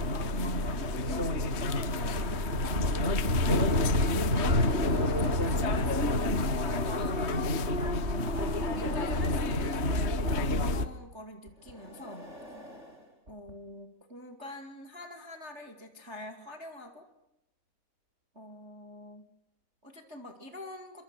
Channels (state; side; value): late; left; 3.2 ms